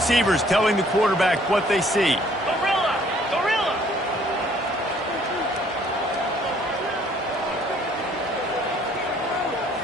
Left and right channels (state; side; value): normal; both; correlation 0.61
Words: telling the quarterback what they see. Gorilla! Gorilla!